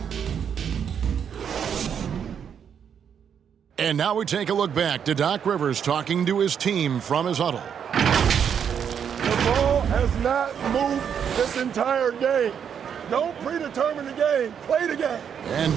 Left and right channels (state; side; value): quieter; left; 7.9 dB